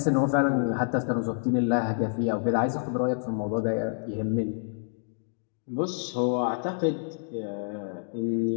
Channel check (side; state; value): right; silent; digital silence